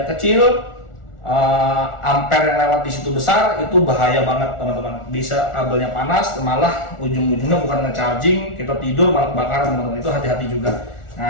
kecil, ampere yang lewat di situ besar, itu bahaya banget teman-teman. Bisa kabelnya panas, malah ujung-ujungnya bukan nge-charging, kita tidur malah kebakaran teman-teman, itu hati-hati juga.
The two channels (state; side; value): late; right; 1.4 ms